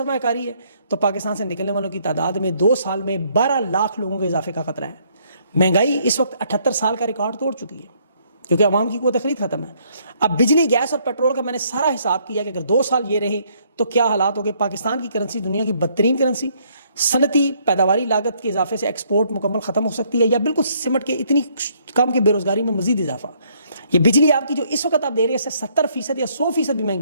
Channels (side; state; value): both; inverted; correlation -0.67